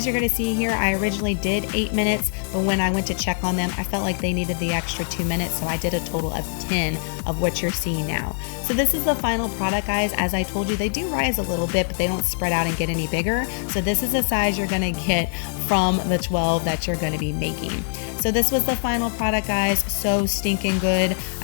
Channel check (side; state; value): right; silent; digital silence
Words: you're going to see here, I originally did 8 minutes, but when I went to check on them, I felt like they needed the extra 2 minutes, so I did a total of 10 of what you're seeing now. So this is the final product, guys. As I told you, they do rise a little bit, but they don't spread out and get any bigger. So this is the size you're going to get from the 12 that you're going to be making. So this was the final product, guys. So stinking good.